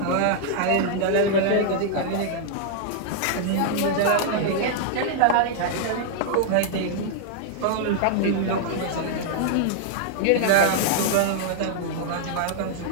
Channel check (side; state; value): both; different; correlation -0.01